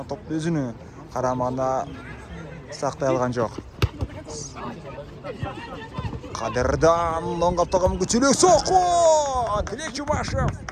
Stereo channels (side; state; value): both; identical; correlation 1.00